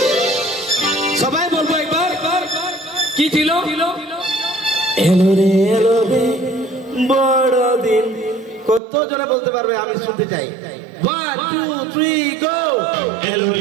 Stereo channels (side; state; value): left; drops out; at 8.8 s